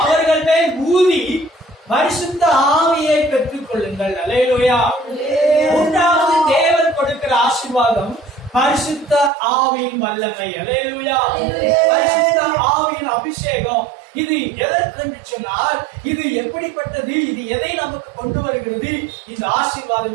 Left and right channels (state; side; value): drops out; left; at 9.3 s